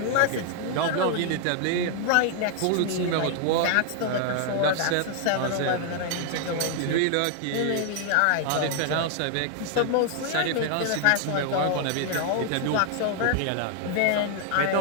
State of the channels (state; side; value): different; both; correlation 0.00